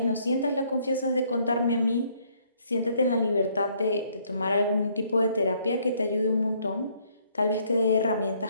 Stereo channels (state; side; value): inverted; both; correlation -0.66